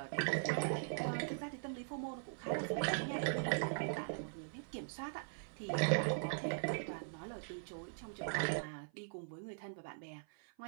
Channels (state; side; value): silent; left; 50 dB below the other